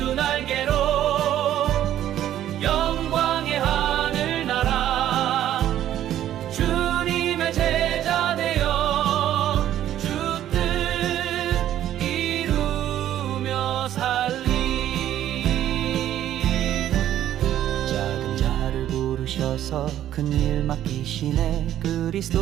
날개로 영광의 하늘나라 주님의 제자 되어 주 뜻 이루며 살리. 작은 자를 부르셔서 큰일 맡기시네.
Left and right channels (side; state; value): left; quieter; 11.8 dB